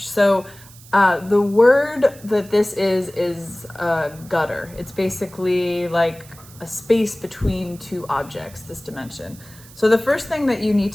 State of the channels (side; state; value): right; noise; hiss, 21 dB below the sound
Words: So the word that this is gutter. It's basically like a space between two objects, this dimension. So the first thing that you need